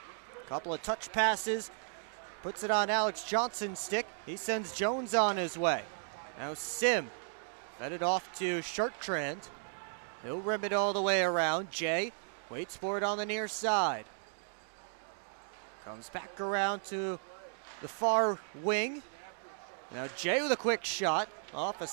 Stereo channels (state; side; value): silent; left; 54 dB below the other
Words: Couple of touch passes. Puts it on Alex Johnson's stick. He sends Jones on his way. Now Sim fed it off to Chartrand. He'll rim it all the way around. Jay waits for it on the near side. Comes back around to the far wing. Now Jay with a quick shot off a